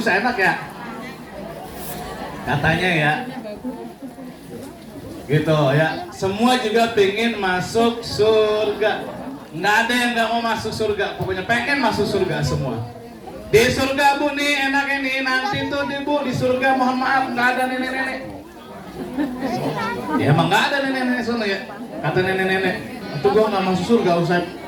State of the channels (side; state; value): both; identical; correlation 1.00